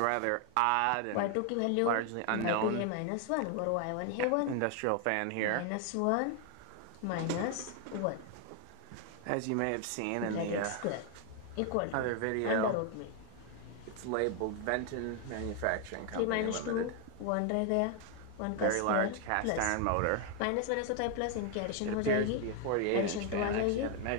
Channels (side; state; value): both; different; correlation 0.01